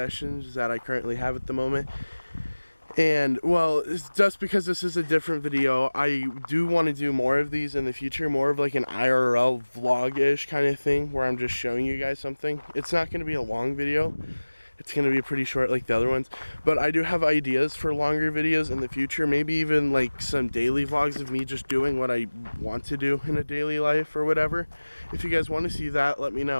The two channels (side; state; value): both; inverted; correlation -1.00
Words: that I currently have at the moment. And well, it's just because this is a different video, I do want to do more of these in the future, more of like an IRL vlog-ish kind of thing where I'm just showing you guys something. It's not going to be a long video. It's going to be pretty short like the other ones, but I do have ideas for longer videos in the future, maybe even like some daily vlogs of me just doing what I want to do in a daily life or whatever. If you guys want to see that, let me